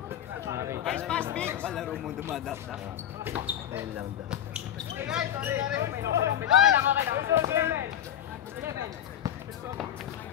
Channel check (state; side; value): quieter; right; 10.3 dB